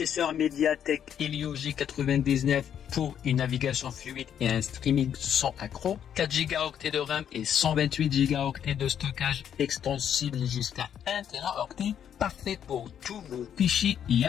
MediaTek Helio G99 pour une navigation fluide et un streaming sans accroc. 4 Go de RAM et 128 Go de stockage extensible jusqu'à 1 Teraoctet. Parfait pour tous vos fichiers et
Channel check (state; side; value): quieter; right; 9.1 dB